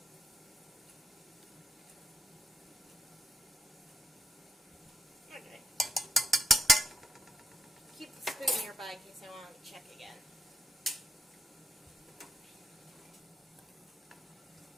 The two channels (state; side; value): normal; both; correlation 0.77